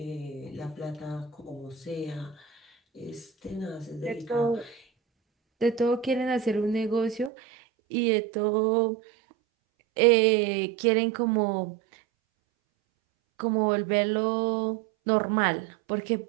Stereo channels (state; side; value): drops out; left; at 7.3 s